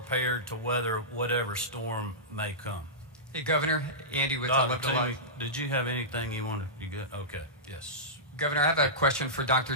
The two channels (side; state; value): both; normal; correlation -0.16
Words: to weather whatever storm may come. Hey, Governor, Andy with Dr. Live to Toomey, Life. did you have anything you wanted? You good? Okay, yes. Governor, I have a question for Dr.